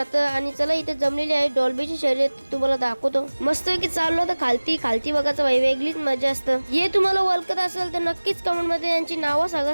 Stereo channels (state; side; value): inverted; both; correlation -1.00